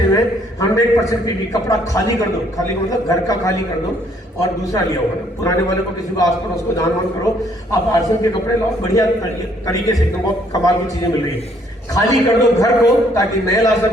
हुए हैं, 100% पीवी। कपड़ा खाली कर दो, खाली मतलब घर का खाली कर दो और दूसरा लिया होगा ना, पुराने वाले को किसी को आस पड़ोस को दान वान करो। आप आरसीएम के कपड़े लाओ, बढ़िया तरीके से एकदम बहुत कमाल की चीजें मिल रही है। खाली कर दो घर को ताकि नया ला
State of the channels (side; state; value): both; normal; correlation 0.65